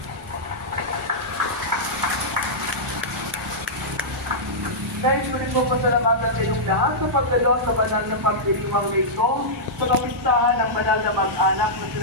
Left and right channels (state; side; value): normal; both; correlation -0.12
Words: Guys, ulit po pasalamatan sa inyong lahat sa pagdalo sa banal na pagdiriwang rito sa kapistahan ng banal na mag-anak na